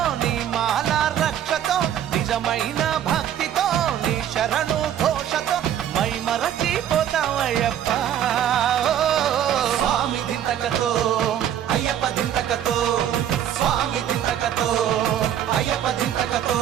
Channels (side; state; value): left; quieter; 10.4 dB